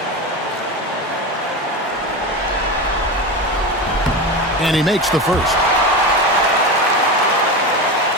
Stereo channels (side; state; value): both; normal; correlation 0.22